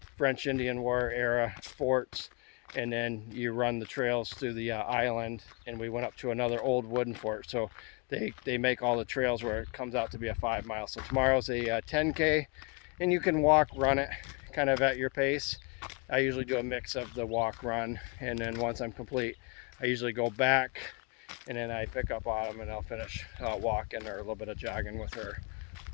French Indian War era forts, and then you run the trails through the island, and we went up to another old wooden fort. So they make all the trails where it comes out to be a 5 mile. So tomorrow's a 10K, and you can walk, run it kind of at your pace. I usually do a mix of the walk, run, and then once I'm complete, I usually go back and then I pick up Autumn and I'll finish walking or a little bit of jogging with her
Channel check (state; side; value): quieter; right; 32.8 dB